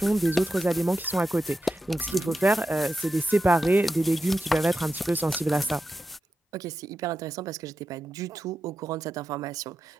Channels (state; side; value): normal; both; correlation 0.89